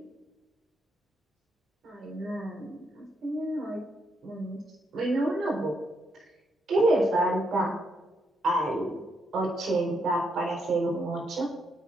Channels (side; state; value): both; normal; correlation 0.78